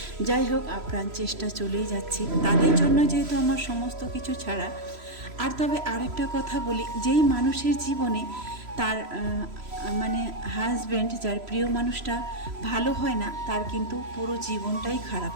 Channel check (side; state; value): left; late; 3.0 ms